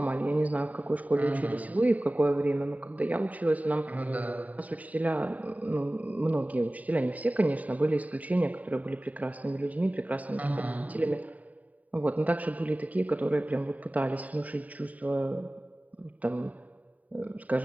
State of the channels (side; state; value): left; late; 0.072 ms